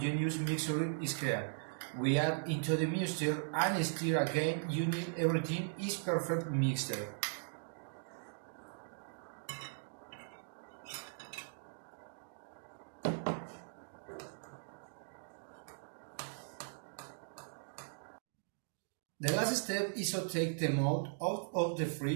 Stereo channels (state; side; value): silent; left; digital silence